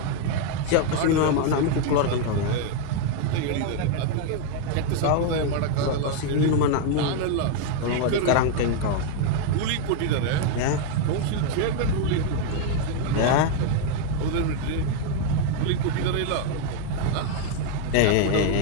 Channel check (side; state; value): both; different; correlation 0.00